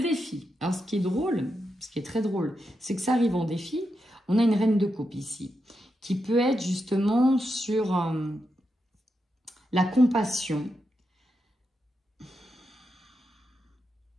Alors, ce qui est drôle, ce qui est très drôle, c'est que ça arrive en défi. On a une reine de coupe ici, qui peut être justement sur la compassion,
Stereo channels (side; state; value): both; normal; correlation 0.86